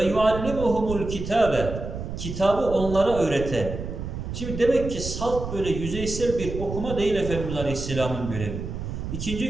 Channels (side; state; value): right; noise; rumble, 7 dB below the sound